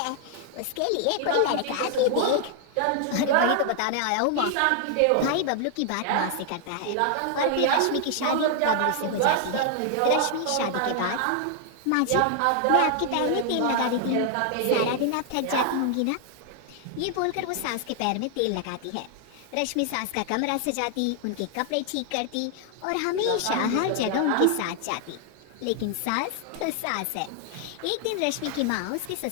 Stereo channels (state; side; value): different; both; correlation 0.00